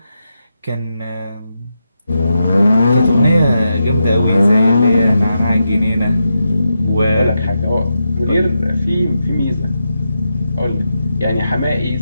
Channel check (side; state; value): both; inverted; correlation -0.86